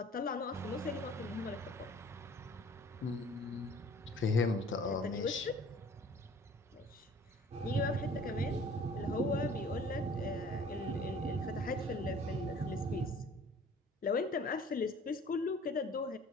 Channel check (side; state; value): both; normal; correlation 0.50